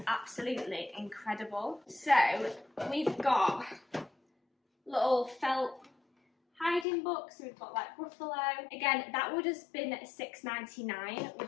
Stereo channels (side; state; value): right; drops out; at 6.9 s